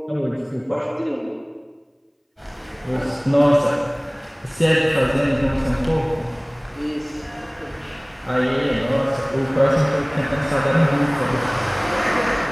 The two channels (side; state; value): both; identical; correlation 1.00